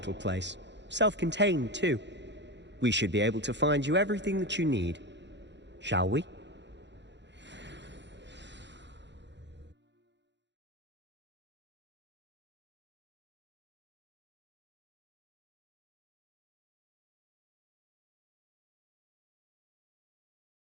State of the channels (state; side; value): late; left; 0.52 ms